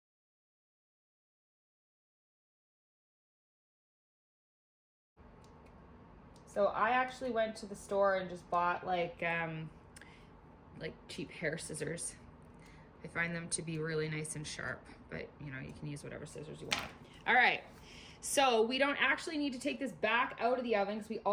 So I actually went to the store and just bought like cheap hair scissors. I find them to be really nice and sharp, but you know, you can use whatever scissors you want. All right, so we don't actually need to take this back out of the oven because we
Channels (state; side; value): identical; both; correlation 1.00